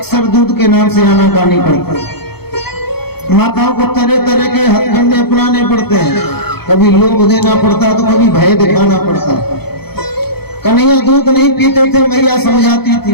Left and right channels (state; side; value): late; right; 0.96 ms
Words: दूध के नाम से आनाकानी करते, माताओं को तरह तरह के हथकंडे अपनाने पड़ते हैं, कभी लोभ देना पड़ता तो कभी भय दिखाना पड़ता। कन्हैया दूध नहीं पीते थे, मैया समझाती थी।